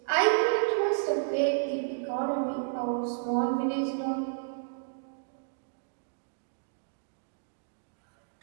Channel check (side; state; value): left; silent; digital silence